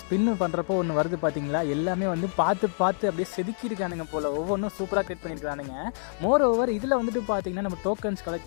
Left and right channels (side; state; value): right; silent; 60 dB below the other